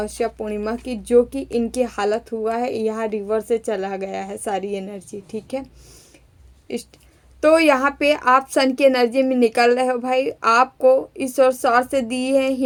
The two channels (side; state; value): both; identical; correlation 1.00